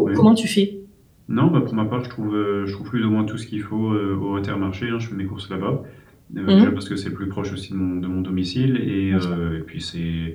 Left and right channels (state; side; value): identical; both; correlation 1.00